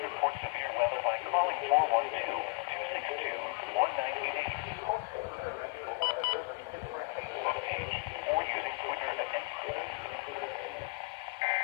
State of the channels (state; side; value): quieter; right; 28.4 dB